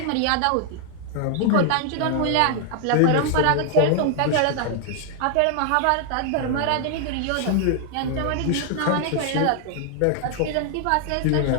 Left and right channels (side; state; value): both; different; correlation 0.00